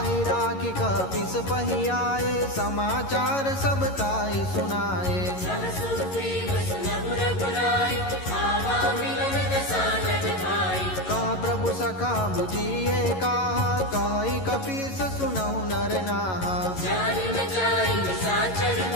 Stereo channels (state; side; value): late; right; 11 ms